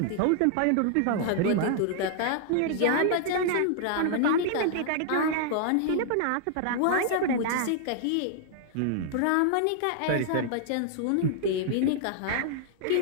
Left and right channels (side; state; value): both; different; correlation -0.01